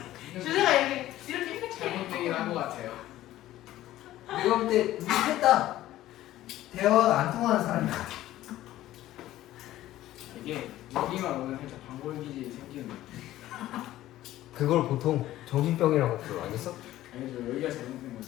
주제가 이렇게 잘못 얘기를 것 같아요. 내가 볼 때 우리 했다. 대화가 안 통하는 사람이 같아. 이게 여기만 오면 살짝 방골 기질이 생기는. 그걸 보통 정신병이라고 불러. 알겠어? 아니죠, 여기가 잘못된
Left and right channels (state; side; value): quieter; right; 14.6 dB